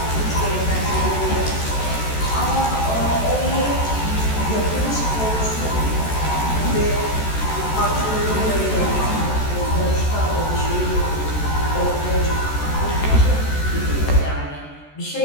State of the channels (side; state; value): right; late; 14 ms